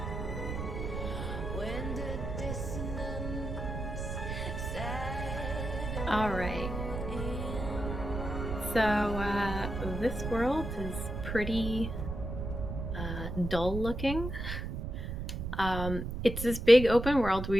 when the dissonance settled All right. in. So this world is pretty dull looking. It's this big open world where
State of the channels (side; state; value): right; noise; rumble, 5 dB below the sound